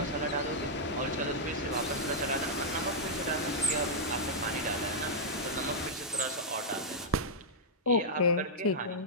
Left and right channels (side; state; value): both; normal; correlation -0.07